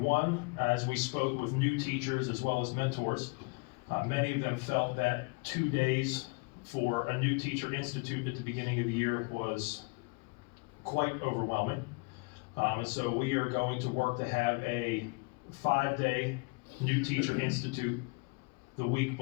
one, as we spoke with new teachers as well as mentors, many of them felt that 2 days for a new teacher institute at the beginning of the year was quite overwhelming. And so we are going to work to have a 5-day new teacher institute the week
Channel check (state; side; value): quieter; right; 30.5 dB